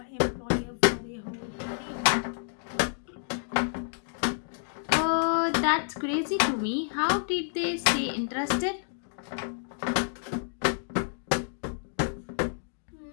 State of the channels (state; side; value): silent; right; digital silence